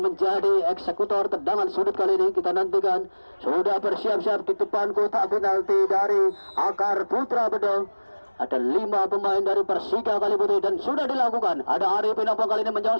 menjadi eksekutor tendangan sudut kali ini. Kita nantikan, sudah bersiap-siap di depan kotak penalti dari Akar Putra Bedong. Ada 5 pemain dari Persika Kalibute dan sudah dilakukan. Ada Arifin Ompong kali ini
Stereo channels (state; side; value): inverted; both; correlation -1.00